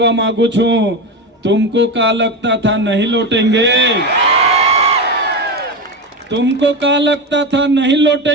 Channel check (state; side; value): normal; both; correlation 0.18